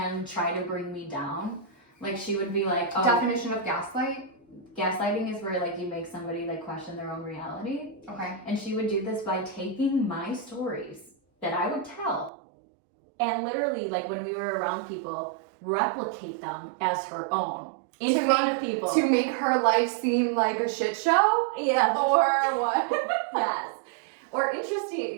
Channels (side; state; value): left; drops out; at 12.3 s